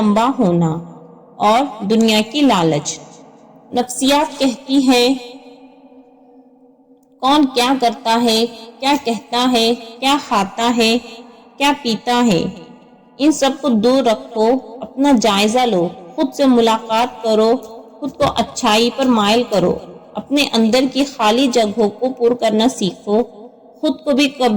ہونا، اور دنیا کی لالچ۔ نفسیات کہتی ہے کون کیا کرتا ہے، کیا کہتا ہے، کیا کھاتا ہے، کیا پیتا ہے، ان سب کو دور رکھو، اپنا جائزہ لو، خود سے ملاقات کرو، خود کو اچھائی پر مائل کرو، اپنے اندر کی خالی جگہوں کو پر کرنا سیکھو، خود کو بھی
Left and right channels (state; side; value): identical; both; correlation 1.00